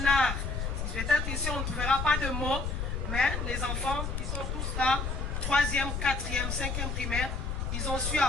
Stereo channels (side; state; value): left; noise; rumble, 2 dB below the sound